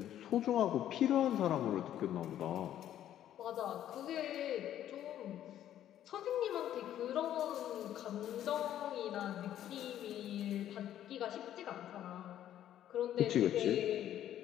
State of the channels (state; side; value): quieter; right; 11.5 dB